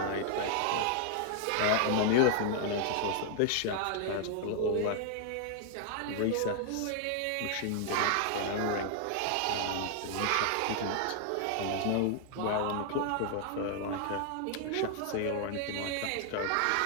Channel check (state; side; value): different; both; correlation 0.00